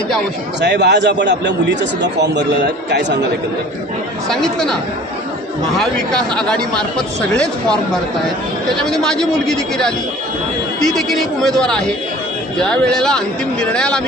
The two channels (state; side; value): normal; both; correlation 0.46